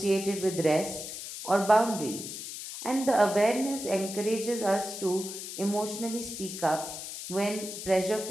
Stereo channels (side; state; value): left; noise; hiss, 8 dB below the sound